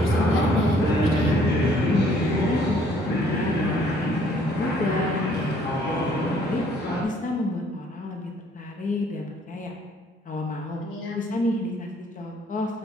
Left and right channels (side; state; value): both; normal; correlation 0.62